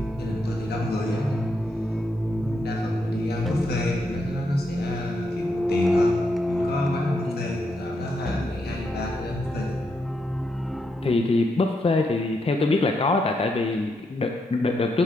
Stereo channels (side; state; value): both; normal; correlation 0.81